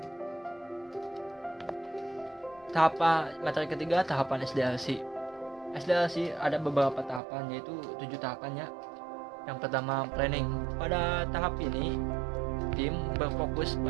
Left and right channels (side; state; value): left; drops out; at 7.2 s